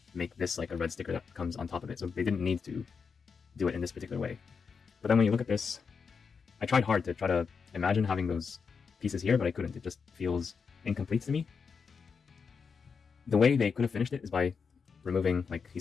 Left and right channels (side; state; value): right; quieter; 5.7 dB